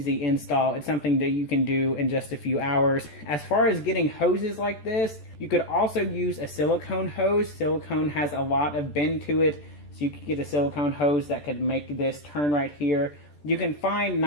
install. It's something that you can do in just a few hours. As far as getting hoses like this, you could also use a silicone hose. Silicone has a lot of bend to it, so you could get a silicone hose that could make this turn right here. You can find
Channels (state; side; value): late; right; 14 ms